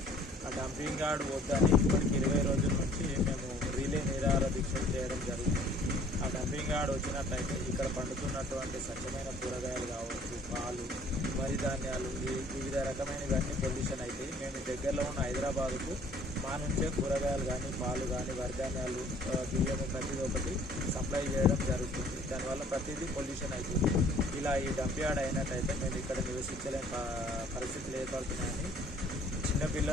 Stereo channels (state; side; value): normal; both; correlation 0.56